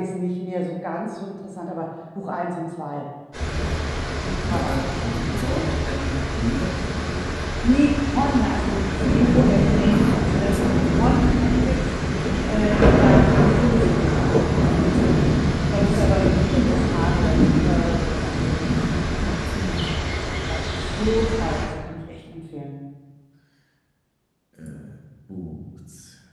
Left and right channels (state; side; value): identical; both; correlation 1.00